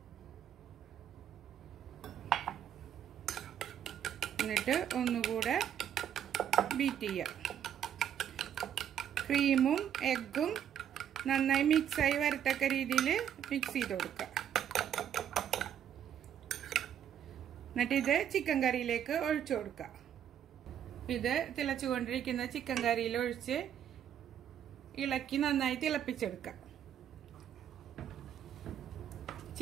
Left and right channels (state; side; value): quieter; left; 9.6 dB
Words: എന്നിട്ട് ഒന്നുകൂടെ ബീറ്റ് ചെയ്യുക. ക്രീമും എഗ്ഗും നന്നായി മിക്സായി വരത്തക്ക രീതിയിൽ മിക്സ് ചെയ്ത് കൊടുക്കുക. എന്നിട്ട് ഇത് ചിക്കൻ കറിയിലേക്ക് ഒഴിച്ചു കൊടുക്കുക. ഇത് തിളച്ചുകൊണ്ടിരിക്കുന്ന ചിക്കൻ കറിയിൽ ഒഴിച്ച് ഇളക്കി നന്നായി തിളപ്പിച്ചെടുക്കുക.